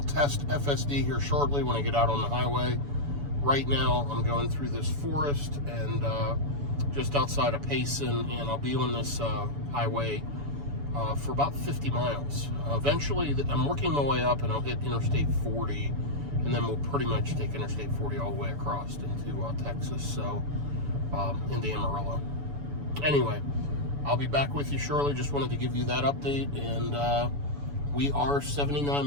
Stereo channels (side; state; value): left; late; 7.0 ms